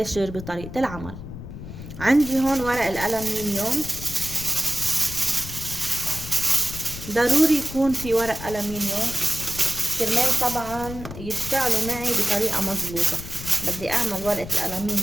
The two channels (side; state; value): left; noise; rumble, 11 dB below the sound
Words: بطريقة العمل. عندي هون ورق الألمنيوم، ضروري يكون في ورق ألمنيوم كرمال طبعا يشتغلوا معي بطريقة مظبوطة. بدي اعمل ورقة